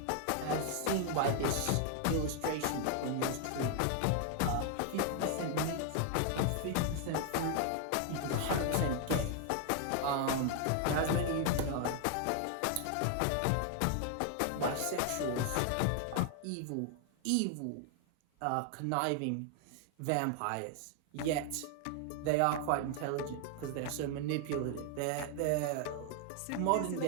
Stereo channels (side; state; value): both; different; correlation 0.00